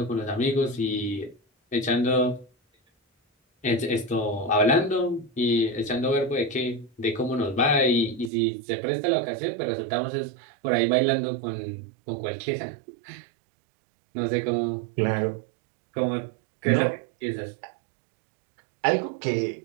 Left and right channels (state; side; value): drops out; left; at 8.3 s